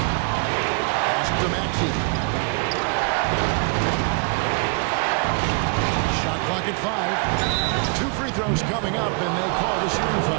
To Maxey. Shot clock at 5. 2 free free throws coming up, and they call the shooting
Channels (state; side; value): quieter; left; 35.1 dB